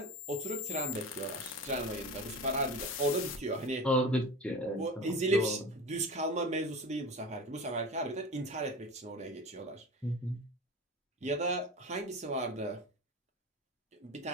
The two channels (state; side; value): normal; both; correlation 0.31